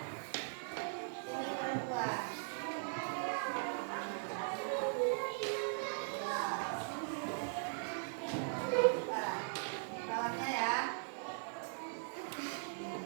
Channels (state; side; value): silent; left; digital silence